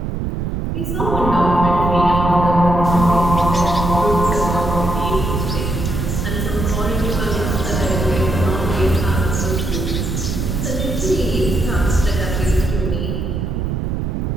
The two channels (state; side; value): noise; right; rumble, 2 dB below the sound